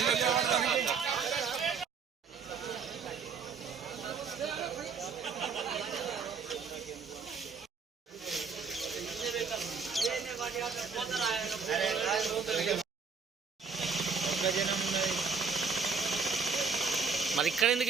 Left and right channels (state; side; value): quieter; left; 5.3 dB